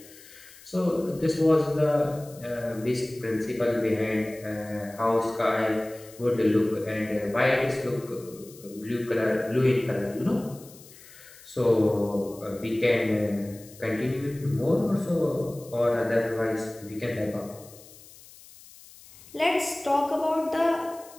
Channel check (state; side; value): noise; left; hiss, 21 dB below the sound